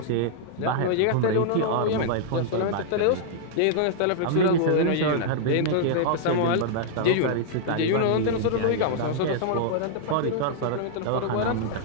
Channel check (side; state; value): both; different; correlation -0.01